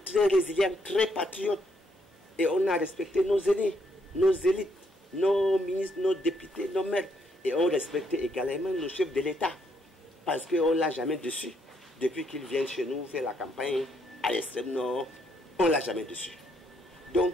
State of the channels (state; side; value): normal; both; correlation 0.73